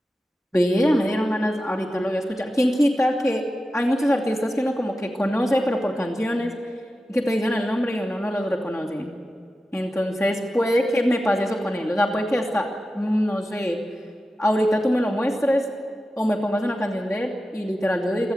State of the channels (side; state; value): both; normal; correlation 0.92